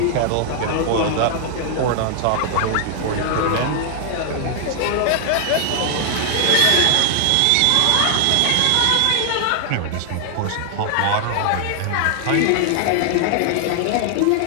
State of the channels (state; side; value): different; both; correlation 0.00